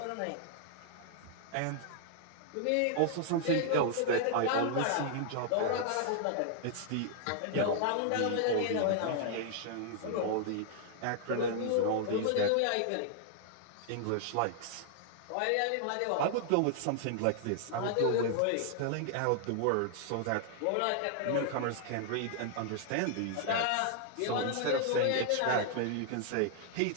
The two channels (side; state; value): both; different; correlation 0.00